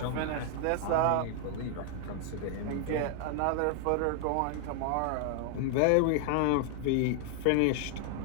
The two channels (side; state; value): both; different; correlation 0.00